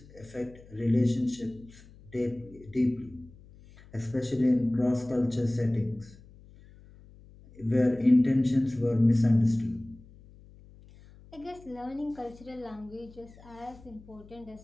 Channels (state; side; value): noise; left; hum, 23 dB below the sound